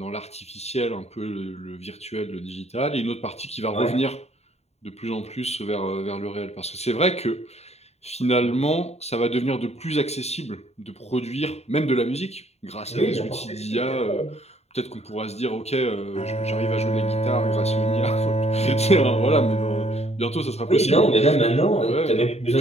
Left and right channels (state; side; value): late; right; 0.31 ms